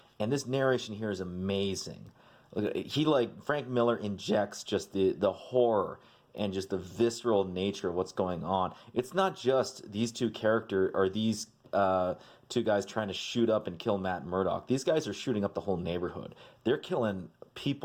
And this narration here is amazing. He Frank Miller injects just the horror and just the visceral nature of what's going on. It's not just these two guys trying to shoot up and kill Matt Murdock. These guys are shooting up the whole neighborhood. They're killing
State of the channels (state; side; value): identical; both; correlation 1.00